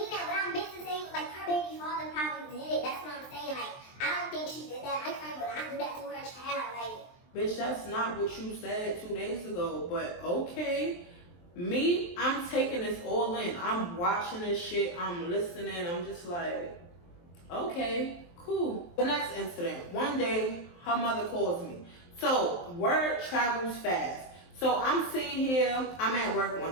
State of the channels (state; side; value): late; right; 23 ms